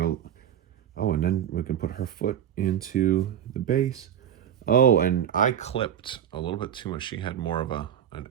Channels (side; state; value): left; quieter; 9.7 dB